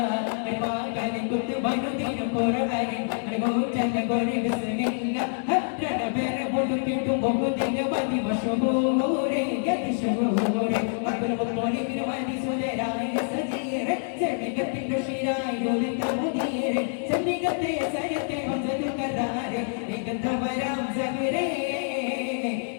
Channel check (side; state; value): right; silent; digital silence